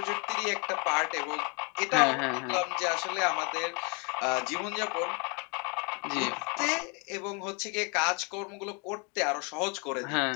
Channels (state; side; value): quieter; right; 33.7 dB